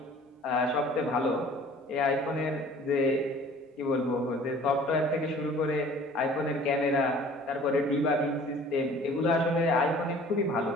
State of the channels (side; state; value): both; normal; correlation 0.49